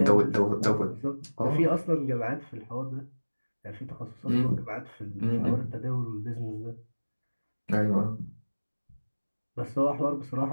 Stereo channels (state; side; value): inverted; both; correlation -1.00